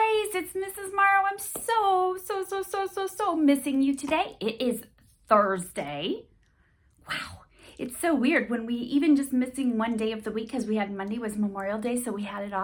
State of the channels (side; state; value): both; identical; correlation 1.00